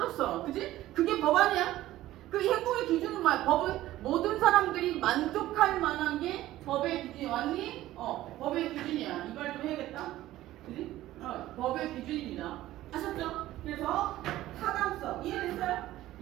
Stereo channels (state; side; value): quieter; left; 15.1 dB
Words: 그지? 그게 법 아니야? 그 행복의 기준은 뭐야? 법은 모든 사람들이 만족할 만한 게 법의 기준이 왔니? 법의 기준이야. 이 말 좀 해야겠다. 그지? 법의 기준입니다. 아셨죠? 그래서 타당성 이해됐어요?